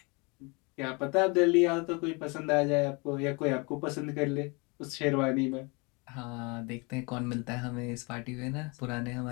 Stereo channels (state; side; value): quieter; right; 29.6 dB